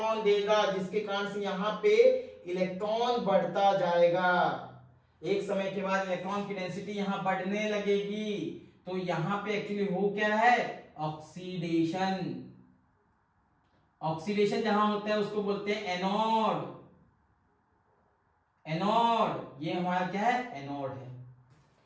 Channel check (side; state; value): both; identical; correlation 1.00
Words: देगा, जिसके कारण से यहाँ पे इलेक्ट्रॉन बढ़ता जाएगा। एक समय के बाद इलेक्ट्रॉन की डेंसिटी यहाँ बढ़ने लगेगी, तो यहाँ पे एक्चुअली हो क्या है, ऑक्सीडेशन। ऑक्सीडेशन जहां होता है उसको बोलते हैं एनोड। एनोड, ये हमारा क्या है, एनोड है।